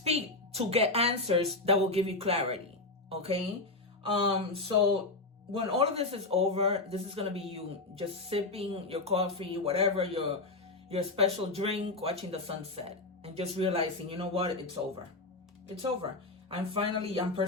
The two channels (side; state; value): right; quieter; 3.2 dB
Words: to get answers that will give you clarity. Okay. So when all of this is over, this is going to be you just sipping your coffee, whatever, your special drink, watching the sunset, and just realizing, you know what, it's over. It's over. I'm